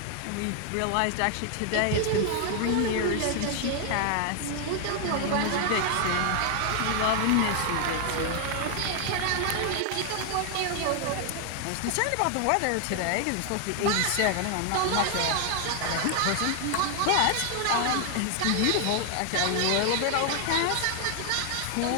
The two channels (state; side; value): different; both; correlation 0.00